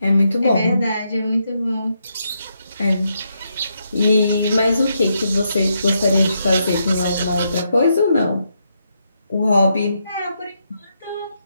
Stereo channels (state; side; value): inverted; both; correlation -0.80